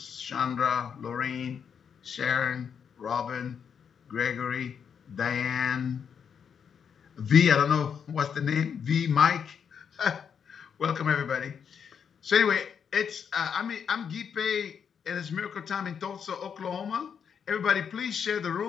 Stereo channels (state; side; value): quieter; right; 7.3 dB